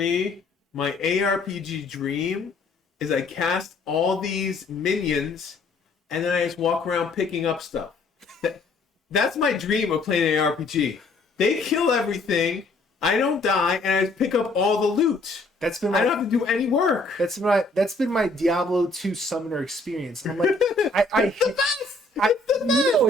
my ARPG dream is I cast all these minions and then I just walk around picking up stuff. That's my dream of playing an ARPG. They kill everything. I don't die, and I just pick up all the loot. I don't have to do any work. That's been my Diablo 2 summoner experience. And I'm like,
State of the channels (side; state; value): right; quieter; 3.1 dB